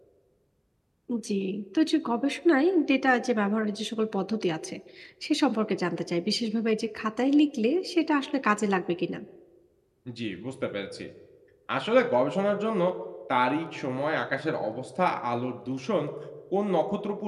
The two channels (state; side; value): identical; both; correlation 1.00